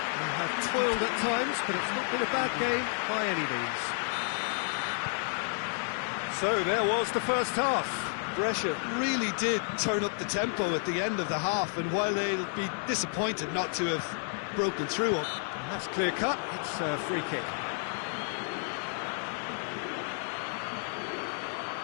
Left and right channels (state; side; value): silent; right; 57 dB below the other